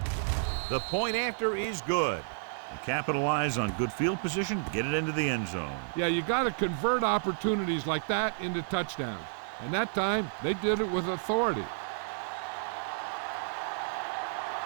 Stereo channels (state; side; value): silent; left; digital silence